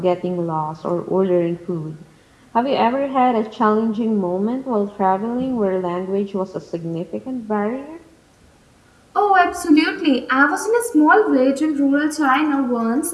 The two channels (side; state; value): both; identical; correlation 1.00